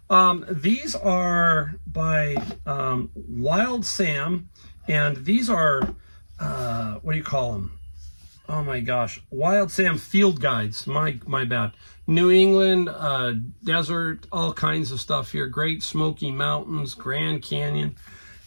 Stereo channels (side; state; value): both; inverted; correlation -1.00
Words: These are by Wild Sam, and these are what do you call them? Oh my gosh, Wild Sam field guides. My bad. New England, desert, all kinds of stuff here. Great Smoky Mountains, Grand Canyon.